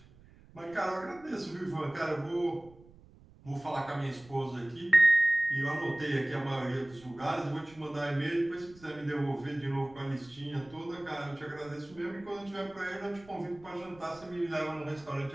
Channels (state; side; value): noise; right; rumble, 24 dB below the sound